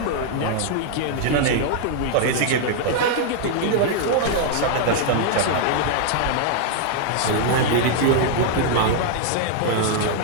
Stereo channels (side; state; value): both; different; correlation 0.00